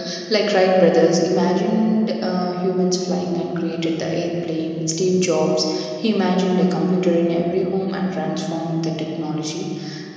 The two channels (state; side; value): identical; both; correlation 1.00